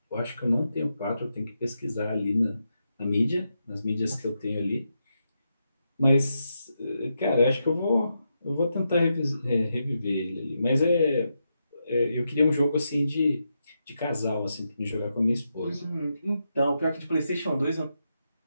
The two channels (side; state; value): both; inverted; correlation -0.85